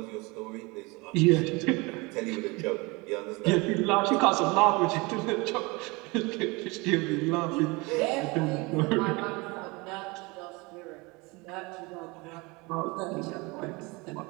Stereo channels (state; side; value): quieter; left; 25.7 dB